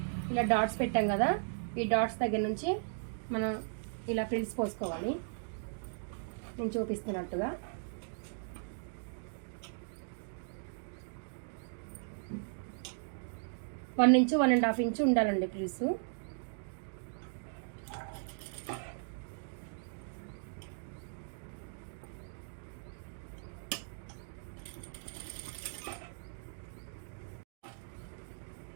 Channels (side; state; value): left; silent; digital silence